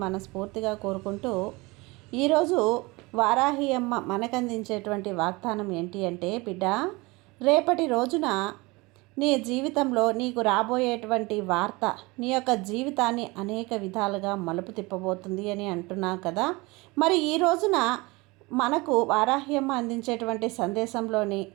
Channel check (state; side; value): quieter; left; 24.1 dB